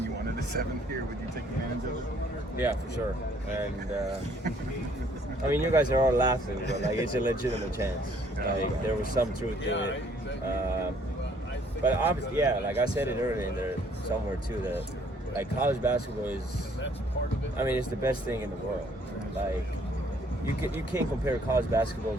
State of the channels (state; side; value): normal; both; correlation 0.62